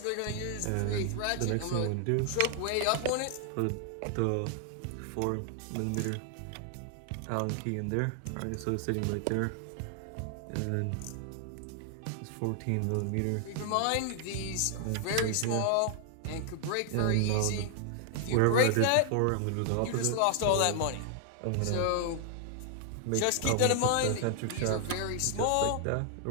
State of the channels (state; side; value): different; both; correlation 0.00